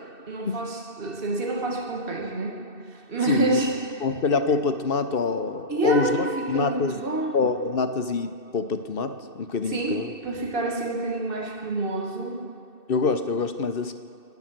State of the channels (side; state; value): right; late; 2.6 ms